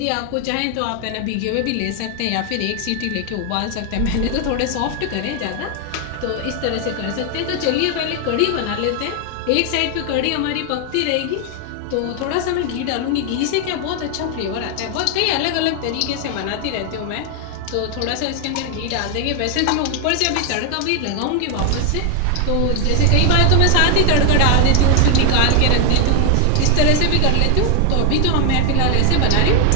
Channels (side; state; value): both; different; correlation 0.00